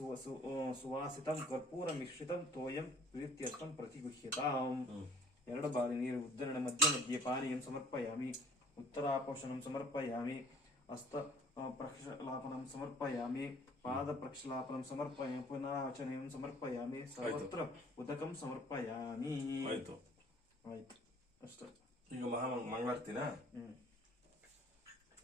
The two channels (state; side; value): normal; both; correlation 0.54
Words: कर्पूर मिश्रितं तोयं प्रीत्यर्थं प्रतिगृह्यताम् ಎರಡು ಬಾರಿ ನೀರು ಉದ್ಧರಣ ಮಧ್ಯ ಮಧ್ಯೆ ಪಾನೀಯಂ ಸಮರ್ಪಯಾಮಿ ಉತ್ತರಾಪೋಷಣಂ ಸಮರ್ಪಯಾಮಿ ಹಸ್ತ ಪ್ರಕ್ಷಾಲಪನಂ ಸಮರ್ಪಯಾಮಿ ಪಾದ ಪ್ರಕ್ಷಾಲಪನಂ ಸಮರ್ಪಯಾಮಿ ಪುನರಾವಚನಂ ಸಮರ್ಪಯಾಮಿ ಸರ್ವತ್ರ ಉದಕಂ ಸಮರ್ಪಯಾಮಿ ಆಯ್ತು ಅಷ್ಟೇ. ಈಗ ಮಂಗಳಾರತಿನ